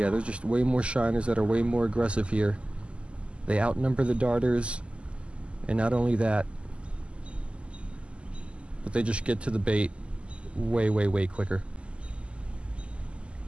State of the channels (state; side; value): late; left; 0.054 ms